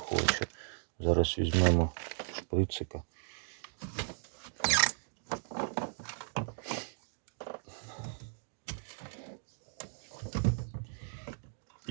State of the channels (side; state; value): left; silent; digital silence